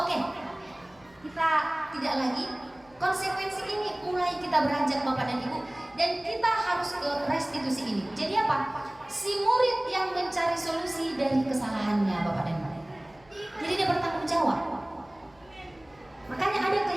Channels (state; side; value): noise; left; hum, 29 dB below the sound